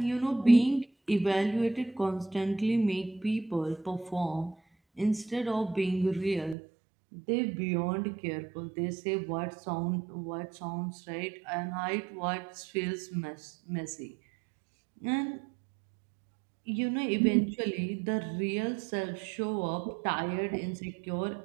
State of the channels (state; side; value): drops out; left; at 6.6 s